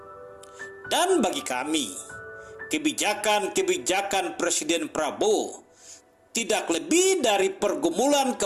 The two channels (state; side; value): identical; both; correlation 1.00